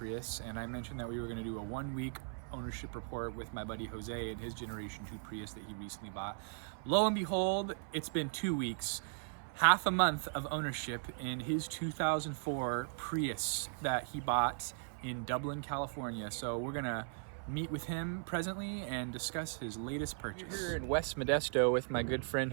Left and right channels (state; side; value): silent; left; 53 dB below the other